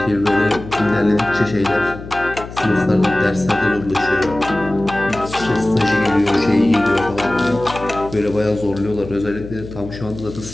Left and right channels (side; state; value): left; noise; hum, 13 dB below the sound